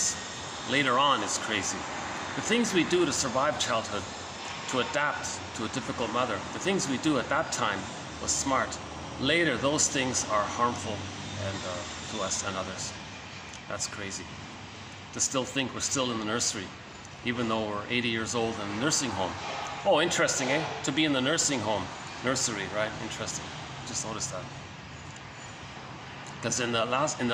later on is crazy. The things we do to survive childhood, to adapt to a difficult mother, the things we do at that time was smart. Later, those things are harmful and to us and others. That's crazy. To still think we're still in the nursery, even though we're 80 years old in a nursing home. Oh, interesting, eh? To be in the nursing home, nursery, right? Interesting. Just noticed that. Because in the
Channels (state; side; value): identical; both; correlation 1.00